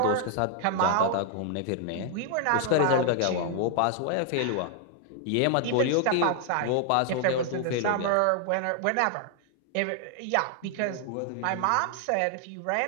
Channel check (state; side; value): different; both; correlation 0.00